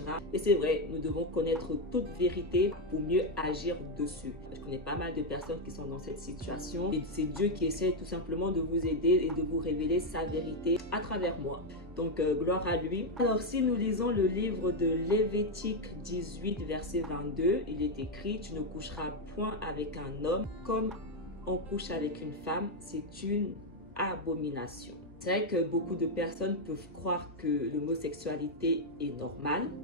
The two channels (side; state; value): both; normal; correlation 0.03